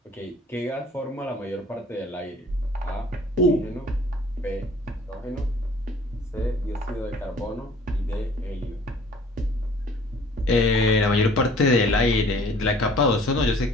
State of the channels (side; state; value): both; normal; correlation 0.52